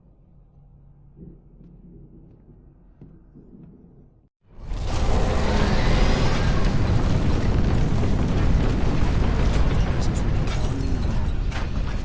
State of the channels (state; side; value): identical; both; correlation 1.00